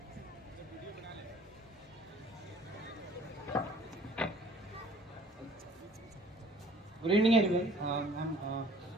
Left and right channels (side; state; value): both; normal; correlation 0.54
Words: Good evening, everyone.